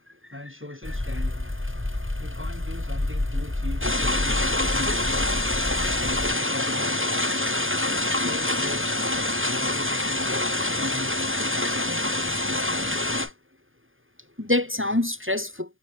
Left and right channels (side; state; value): left; late; 0.59 ms